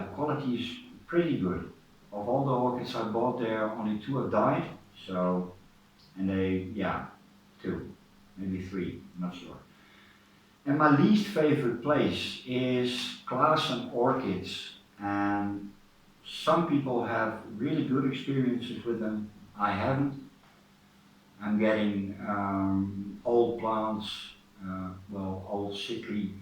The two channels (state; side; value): identical; both; correlation 1.00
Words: quality is pretty good. Of all the orchids I bought there, only 2 have died, so, and they, yeah, 2, maybe 3, I'm not sure. And my least favorite place is Klaassen Orchids, and some people have really good experiences with them. I haven't. I'm getting old plants, well, old sickly